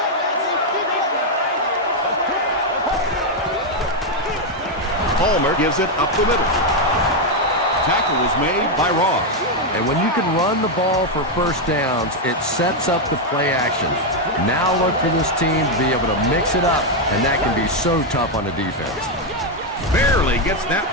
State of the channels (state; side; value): normal; both; correlation 0.02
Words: Palmer gives it up the middle. Tackle was made by Ross. And when you can run the ball for first downs, it sets up the play action. Now look for this team to be able to mix it up, and that can be so tough on the defense. Barely gets that